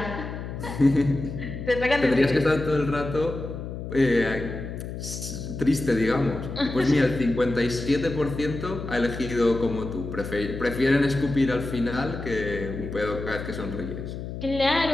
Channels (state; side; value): noise; left; hum, 8 dB below the sound